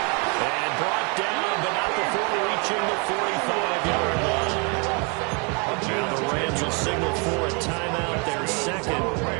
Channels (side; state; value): left; quieter; 33.9 dB